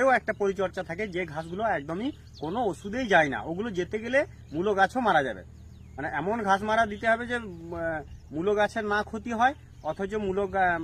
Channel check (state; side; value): identical; both; correlation 1.00